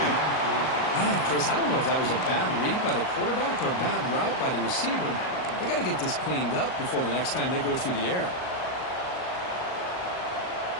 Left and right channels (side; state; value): right; late; 38 ms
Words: Man, Chris, I don't know if that was a bad read by the quarterback or a bad route by the receiver. They got to get this cleaned up before the next time they go through the air.